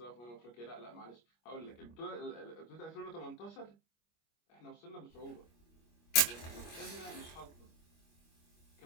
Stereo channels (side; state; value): right; late; 25 ms